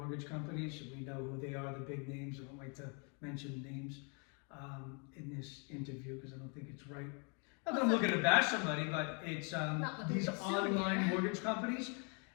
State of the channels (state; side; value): quieter; right; 36.4 dB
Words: companies, we know who they are, the big names. I don't like to mention names in this interview because I don't think it's right. Not that I'm looking to bash somebody, but it's these online mortgage companies.